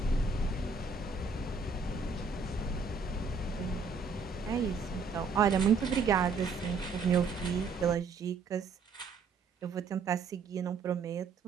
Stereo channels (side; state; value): left; quieter; 4.7 dB